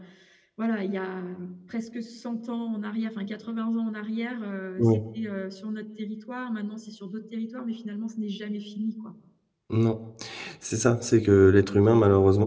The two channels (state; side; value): identical; both; correlation 1.00